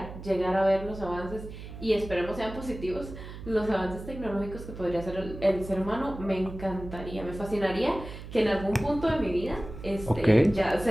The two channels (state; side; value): noise; right; hum, 12 dB below the sound